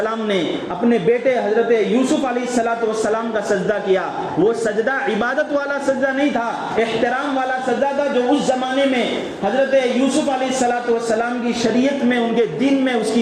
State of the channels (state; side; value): identical; both; correlation 1.00